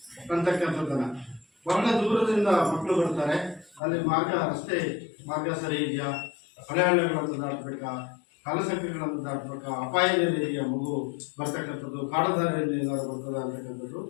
ಅಂತಕ್ಕಂಥದ್ದನ್ನ, ಬಹಳ ದೂರದಿಂದ ಮಕ್ಕಳು ಬರ್ತಾರೆ, ಅಲ್ಲಿ ರಸ್ತೆ ಮಾರ್ಗ ಸರಿ ಇದೆಯಾ, ಹೊಳೆಹಳ್ಳಗಳನ್ನು ದಾಟಬೇಕಾ, ಕಾಲಸಂಖ್ಯೆಗಳನ್ನು ದಾಟಬೇಕಾ, ಅಪಾಯದಲ್ಲಿ ಇದೆಯಾ ಮಗು ಬರ್ತಕ್ಕಂಥದ್ದು, ಕಾಡದಾರಿಯಲ್ಲಿ ಏನಾದ್ರು ಬರ್ತದ ಅಂತಕ್ಕಂಥದ್ದು.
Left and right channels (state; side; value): drops out; right; at 3.8 s